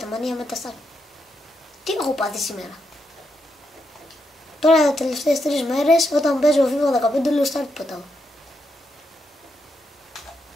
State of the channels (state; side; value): normal; both; correlation 0.82